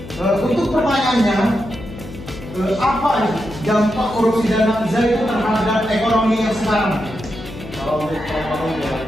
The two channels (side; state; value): left; noise; hum, 13 dB below the sound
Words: Untuk pertanyaannya, apa dampak korupsi dan nafza itu terhadap ekonomi yang sekarang? Kalau untuk ekonomi yang